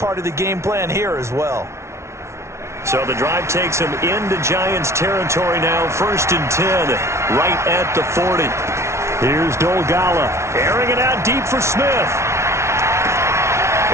of the game plan here as well. So the drive takes him into Giants territory now. First and 10, right at the 40. Here's Dolgala, airing it out deep for Smith.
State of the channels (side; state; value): left; late; 0.13 ms